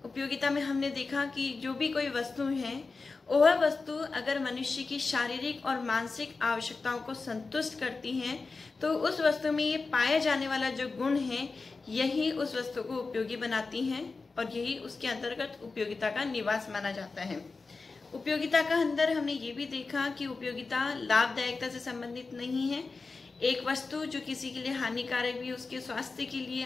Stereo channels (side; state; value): right; quieter; 4.1 dB